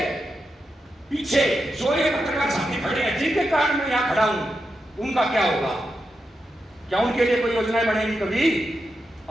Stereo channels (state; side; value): normal; both; correlation 0.87